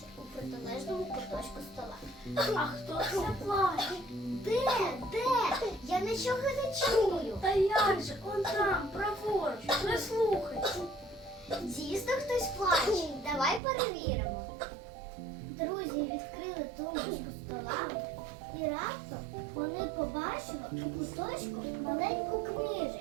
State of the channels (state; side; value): drops out; left; at 13.6 s